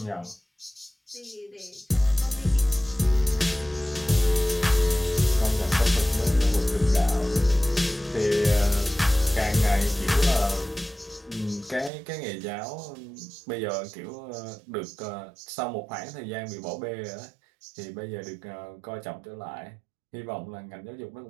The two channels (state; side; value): drops out; left; at 11.9 s